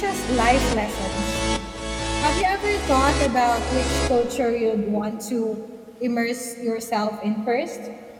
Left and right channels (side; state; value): both; identical; correlation 1.00